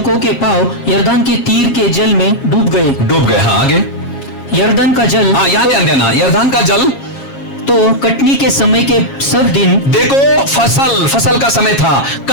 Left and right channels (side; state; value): right; late; 7.3 ms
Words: के पांव यरदान के तीर के जल में डूब गए। हाँ, आगे। यरदान का जल, हाँ, याद देना, यरदान का जल तो कटनी के समय के सब दिन, देखो फसल का समय था,